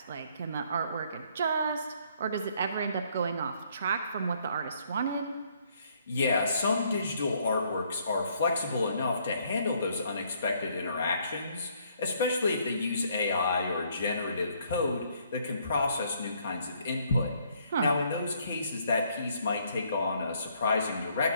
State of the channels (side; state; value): both; inverted; correlation -0.67